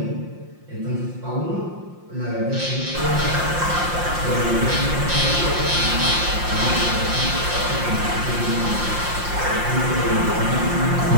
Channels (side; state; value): left; late; 5.7 ms